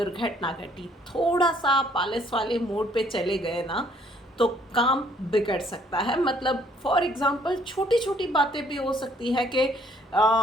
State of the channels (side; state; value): both; normal; correlation 0.63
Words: घटी। थोड़ा सा आप आलस वाले मोड पे चले गए ना तो काम बिगड़ सकता है। मतलब फॉर एग्जांपल छोटी छोटी बातें भी हो सकती है कि